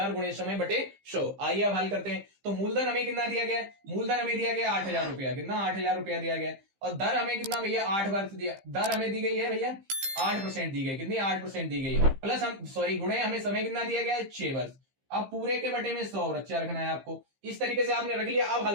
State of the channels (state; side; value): late; left; 15 ms